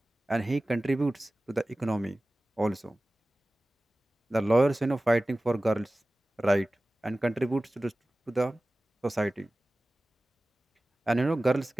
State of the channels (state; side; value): normal; both; correlation 0.97